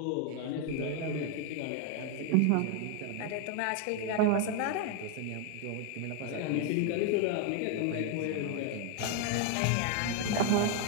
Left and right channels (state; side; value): different; both; correlation 0.01